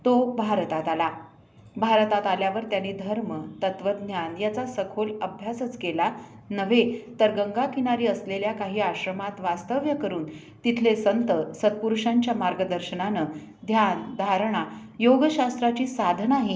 तो भारतात आला. भारतात आल्यावर त्यांनी धर्म, तत्त्वज्ञान याचा सखोल अभ्यासच केला नव्हे, तर गंगाकिनारी असलेल्या काही आश्रमात वास्तव्य करून तिथले संत सत्पुरुषांच्या मार्गदर्शनानं ध्यान, धारणा, योगशास्त्राची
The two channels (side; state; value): both; identical; correlation 1.00